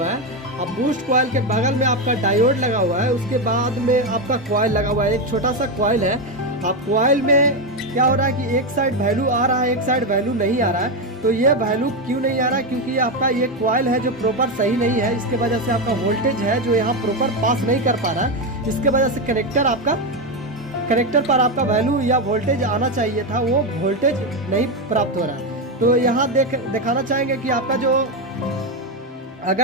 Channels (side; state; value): both; normal; correlation 0.10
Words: है। अब बूस्ट कॉइल के बगल में आपका डायोड लगा हुआ है। उसके बाद में आपका कॉइल लगा हुआ है, एक छोटा सा कॉइल है। अब कॉइल में क्या हो रहा है कि एक साइड वैल्यू आ रहा है, एक साइड वैल्यू नहीं आ रहा है। तो ये वैल्यू क्यों नहीं आ रहा है? क्योंकि ये आपका ये कॉइल है जो प्रॉपर सही नहीं है। इसके वजह से आपका वोल्टेज है जो यहाँ प्रॉपर पास नहीं कर पा रहा है। इसके वजह से कनेक्टर पर आपका वैल्यू या वोल्टेज आना चाहिए था, वो वोल्टेज नहीं प्राप्त हो रहा है। तो यहाँ दिखाना चाहेंगे कि आपका जो